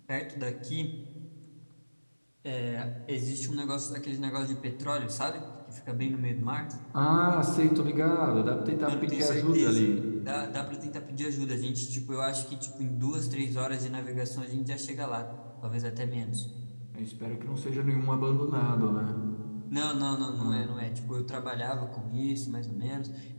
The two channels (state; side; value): inverted; both; correlation -1.00